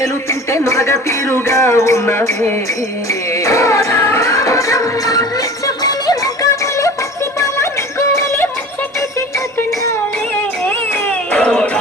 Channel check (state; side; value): normal; both; correlation 0.39